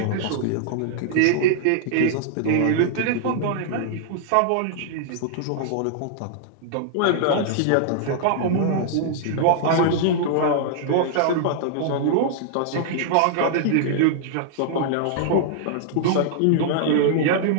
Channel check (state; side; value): different; both; correlation -0.01